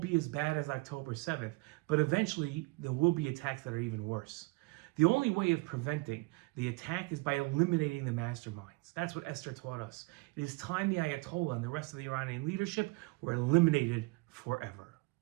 as bad as October 7th, but eventually there will be attacks that are even worse. The only way of preventing the attack is by eliminating the masterminds. That's what Esther taught us. It is time the Ayatollah and the rest of the Iranian leadership were eliminated forever.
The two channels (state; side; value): quieter; left; 25.4 dB